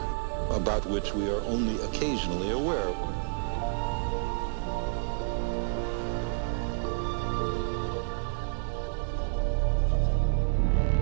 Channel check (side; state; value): left; silent; digital silence